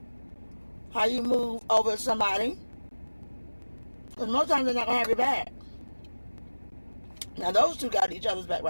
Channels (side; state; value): both; inverted; correlation -1.00